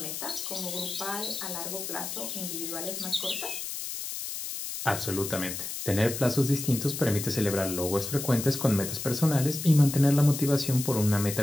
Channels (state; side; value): noise; left; hiss, 6 dB below the sound